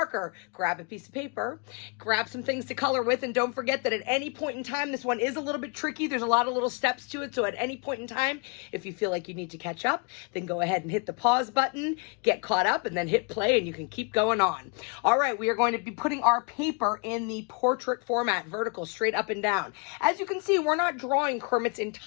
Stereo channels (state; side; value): quieter; right; 34.3 dB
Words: grab a piece of paper, grab some things to color with, and don't forget that at any point in time, this one is a little bit tricky. There's a lot of little steps to it, so at any point in time, if you feel like you need to catch up, then go ahead and hit the pause button, get caught up, and then hit play, and you can keep going on. All right, we are going to be putting our paper in the portrait format, vertical, straight up and down. As you can see, we're not drawing Kermit's